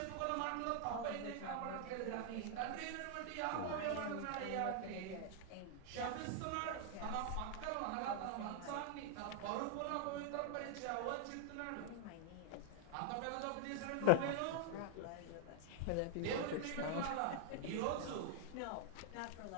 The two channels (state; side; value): different; both; correlation 0.00